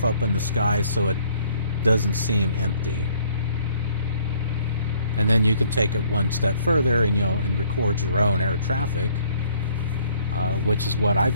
up in the sky so it doesn't seem empty. And then you can take it one step further and and record your own air traffic, which is what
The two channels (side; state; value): both; inverted; correlation -0.61